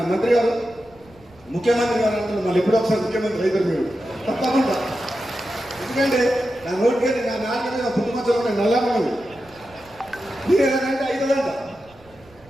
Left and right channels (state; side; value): noise; right; rumble, 26 dB below the sound